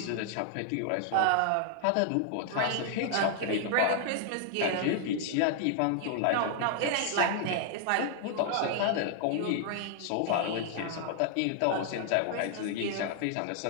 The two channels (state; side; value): different; both; correlation 0.00